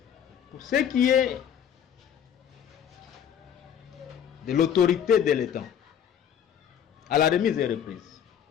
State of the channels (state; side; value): quieter; right; 8.9 dB